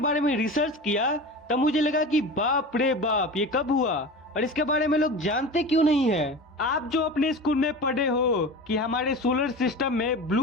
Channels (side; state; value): both; normal; correlation 0.32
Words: में रिसर्च किया तब मुझे लगा कि बाप रे बाप, ये कब हुआ और इसके बारे में लोग जानते क्यों नहीं है। आप जो अपने स्कूल में पढ़े हो कि हमारे सोलर सिस्टम में